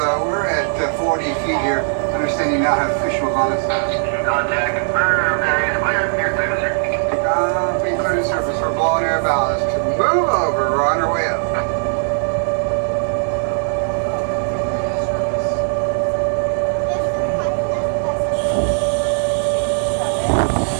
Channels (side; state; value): left; silent; digital silence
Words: at 40 feet here. Understand you now have visuals on us. Contact confirmed. Area clear. Near surface. Being clear to surface. We're blowing air ballast. Move over. We're on our way up.